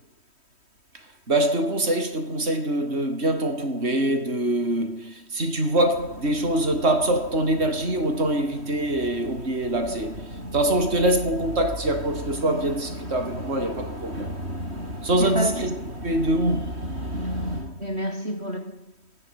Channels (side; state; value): left; late; 3.1 ms